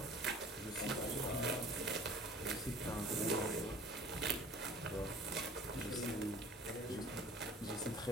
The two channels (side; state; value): both; normal; correlation 0.47